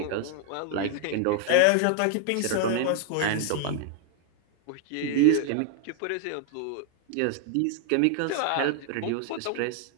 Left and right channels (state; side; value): different; both; correlation 0.00